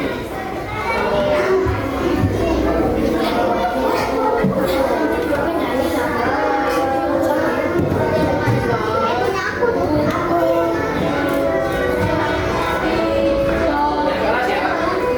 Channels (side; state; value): both; identical; correlation 1.00